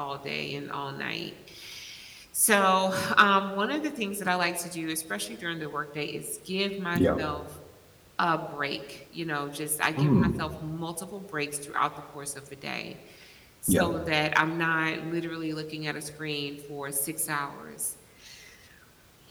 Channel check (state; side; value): identical; both; correlation 1.00